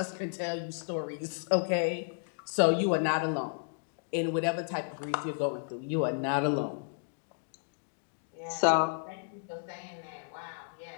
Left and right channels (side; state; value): right; silent; digital silence